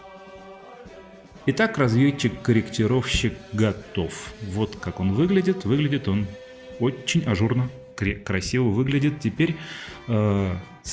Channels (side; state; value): both; identical; correlation 1.00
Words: Итак, разведчик-корректировщик готов. Вот как он выглядит. Выглядит он очень ажурно, красиво выглядит. Теперь